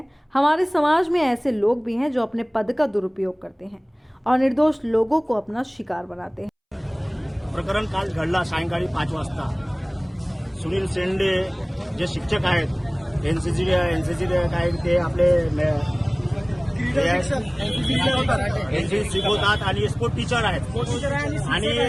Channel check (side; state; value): both; identical; correlation 1.00